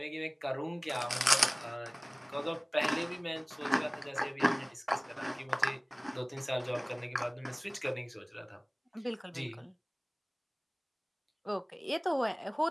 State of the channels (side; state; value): both; identical; correlation 1.00